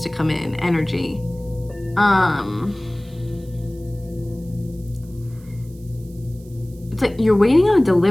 to come in energy. It's like you're waiting on a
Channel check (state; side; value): noise; right; hiss, 27 dB below the sound